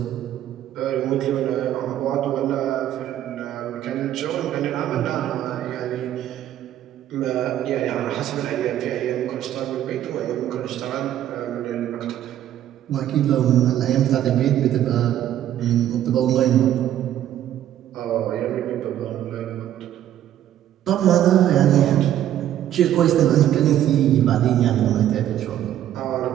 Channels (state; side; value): quieter; left; 11.7 dB